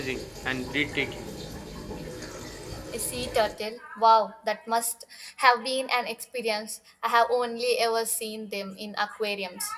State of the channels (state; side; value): identical; both; correlation 1.00